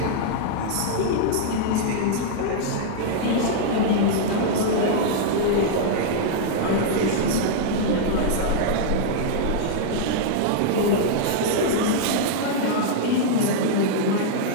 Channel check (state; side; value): different; both; correlation -0.01